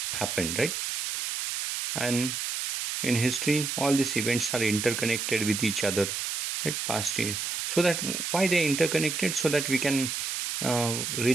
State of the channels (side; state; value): right; noise; hiss, 2 dB below the sound